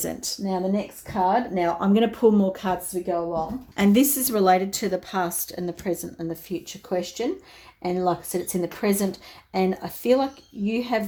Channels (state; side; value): identical; both; correlation 1.00